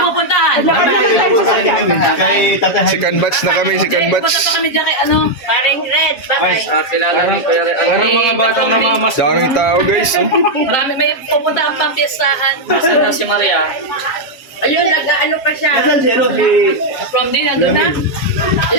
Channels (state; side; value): late; right; 7.3 ms